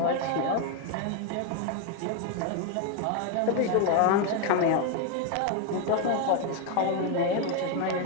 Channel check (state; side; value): different; both; correlation 0.01